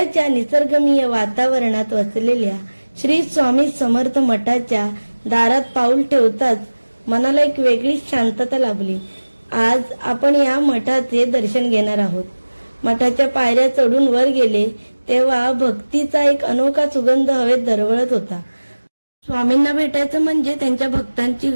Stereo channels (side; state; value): both; inverted; correlation -1.00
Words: निसर्गरम्य वातावरणात वसलेल्या श्री स्वामी समर्थ मठाच्या दारात पाऊल ठेवताच मनाला एक वेगळीच शांतता लाभली। आज आपण या मठाचे दर्शन घेणार आहोत। मठाच्या पायऱ्या चढून वर गेले तेव्हा भक्तीचा एक अनोखा सुगंध हवेत दरवळत होता। स्वामींना भेटायचं म्हणजे त्यांच्या भक्तांची